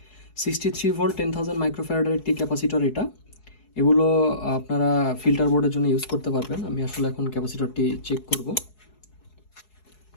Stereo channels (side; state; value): right; late; 4.7 ms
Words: 63 ভোল্ট 10,000 মাইক্রোফ্যারাডের একটি ক্যাপাসিটর এটা। এগুলো আপনারা ফিল্টার বোর্ডের জন্য ইউজ করতে পারবেন। আমি আসলে এখন ক্যাপাসিটরটি চেক করব।